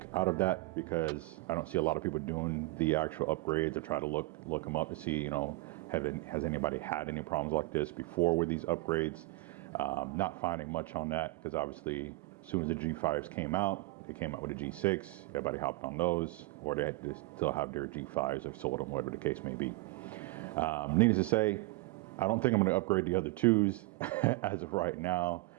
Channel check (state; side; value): quieter; left; 21.2 dB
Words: out of that, because I don't see a lot of people doing the actual upgrades. I try to look them up to see, you know, has anybody had any problems like this before with these upgrades? Not finding much on that, because obviously as soon as the G5s came out, they came out with a G6, everybody hopped on those, or they still have their G5s or sold them, whatever the case may be. Needless to say, I don't think I'm gonna upgrade the other twos as of right now,